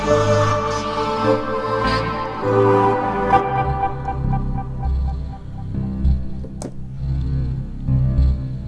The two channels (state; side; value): identical; both; correlation 1.00